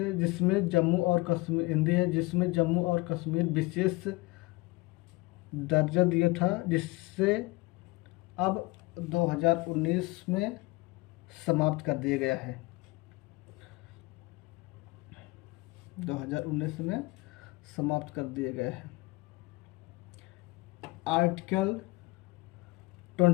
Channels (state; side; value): quieter; right; 22.8 dB